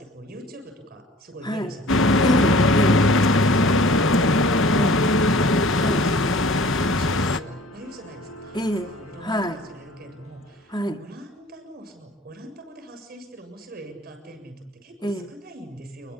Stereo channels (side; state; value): both; normal; correlation 0.49